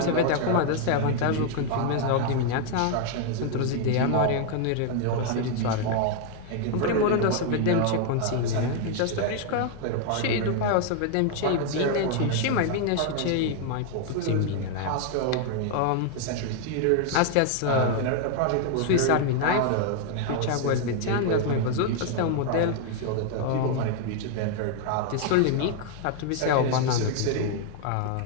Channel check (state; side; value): different; both; correlation 0.00